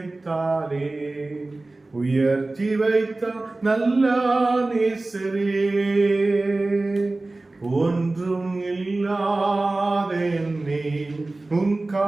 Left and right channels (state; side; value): quieter; left; 3.1 dB